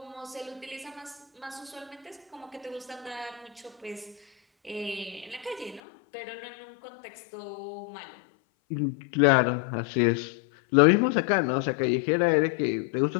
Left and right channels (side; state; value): right; drops out; at 5.8 s